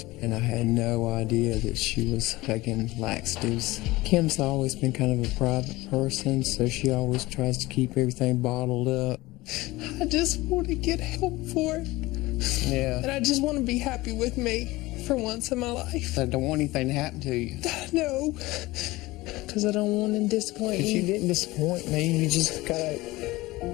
and I had no idea that she was taking laxatives. Kim's always been kind of a private person, so she always tries to keep everything bottled up. I just want to get help for it, Yeah. and I just want to be happy with me. for once in my life. I don't want anything to happen to you. No, because I don't want to disappoint But you you. didn't disappoint me. You just gotta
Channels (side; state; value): right; quieter; 19.7 dB